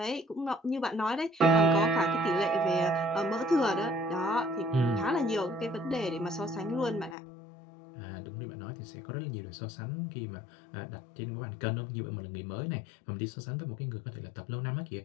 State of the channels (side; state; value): right; drops out; at 7.2 s